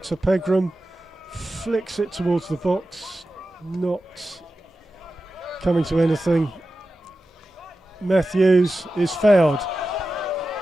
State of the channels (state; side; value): normal; both; correlation 0.93